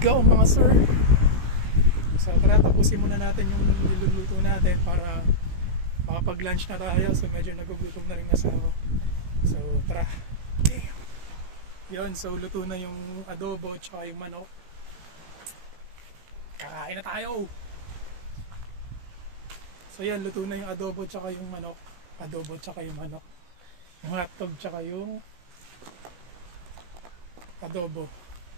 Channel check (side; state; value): left; late; 17 ms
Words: go mga sir. So tara, tapusin muna natin yung niluluto natin para makapag-lunch na tayo. So medyo nagugutom na rin asawa. So tara. Yun, so luto na yung adobo tsaka yung manok. Kakain na tayo. So yan, luto na yung adobo tsaka yung manok. Adobo tsaka yung manok. Yung hotdog tsaka yung adobo.